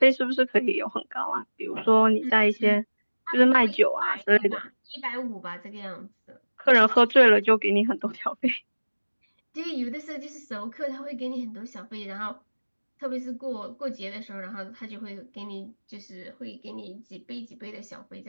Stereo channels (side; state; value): both; inverted; correlation -1.00